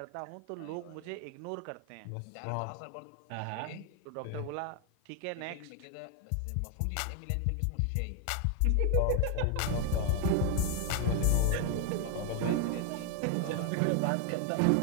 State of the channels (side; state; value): both; different; correlation 0.01